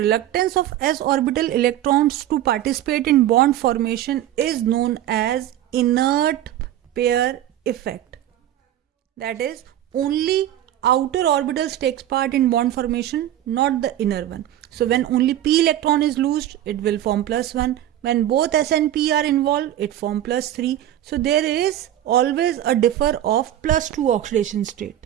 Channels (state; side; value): quieter; left; 12.4 dB